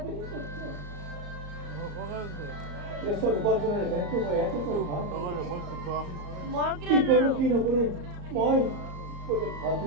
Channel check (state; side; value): late; left; 34 ms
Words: শুদ্ধ প্ৰেছৰ উপাৰ্জনেৰে বেংকটো মই ইয়াতে কৰোঁ কি নকৰোঁ মই